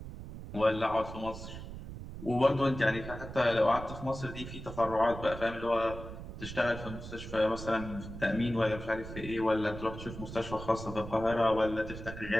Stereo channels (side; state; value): right; noise; rumble, 10 dB below the sound